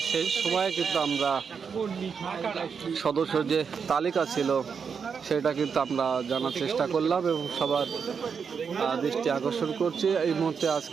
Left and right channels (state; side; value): quieter; left; 6.2 dB